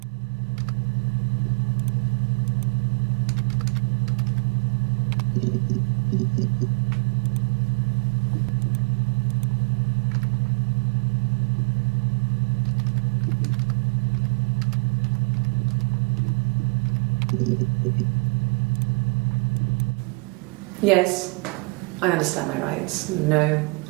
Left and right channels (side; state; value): left; quieter; 28.9 dB